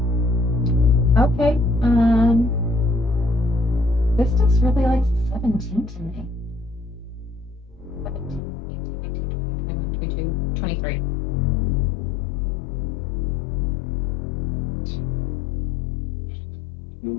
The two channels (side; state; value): right; drops out; at 8.4 s